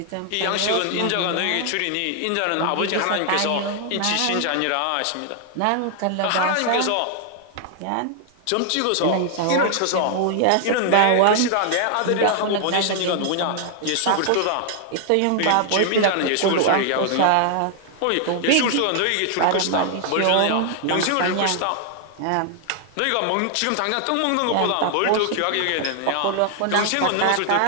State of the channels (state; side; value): different; both; correlation 0.00